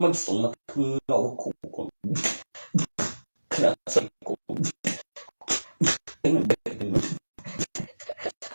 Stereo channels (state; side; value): inverted; both; correlation -1.00